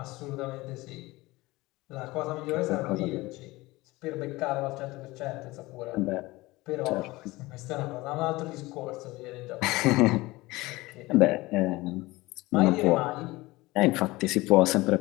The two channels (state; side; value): quieter; right; 20.5 dB